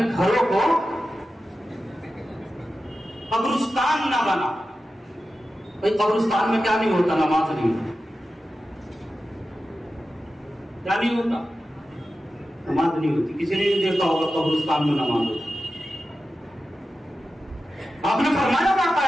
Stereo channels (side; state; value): both; normal; correlation 0.93